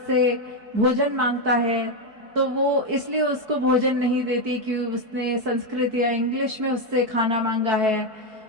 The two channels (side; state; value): left; late; 4.6 ms